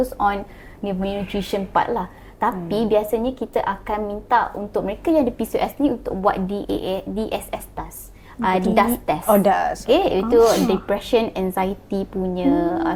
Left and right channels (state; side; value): identical; both; correlation 1.00